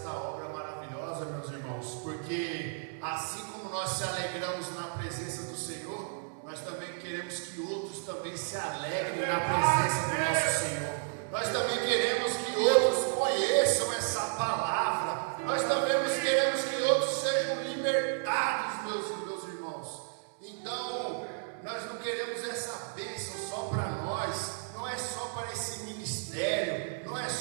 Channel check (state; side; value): silent; left; digital silence